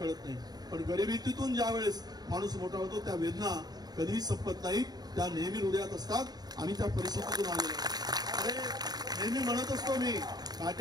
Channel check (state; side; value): late; left; 0.19 ms